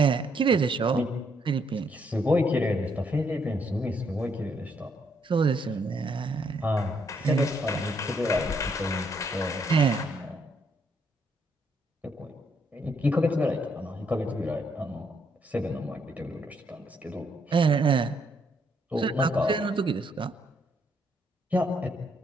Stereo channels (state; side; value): normal; both; correlation 0.73